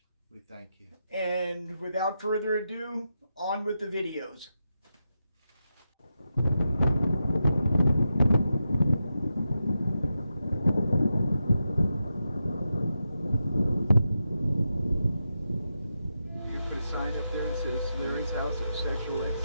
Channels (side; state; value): both; inverted; correlation -0.87